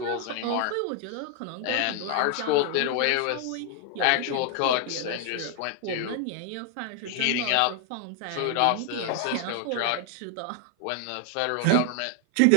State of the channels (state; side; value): different; both; correlation 0.00